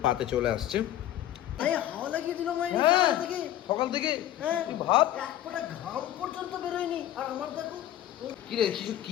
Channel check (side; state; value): right; quieter; 12.5 dB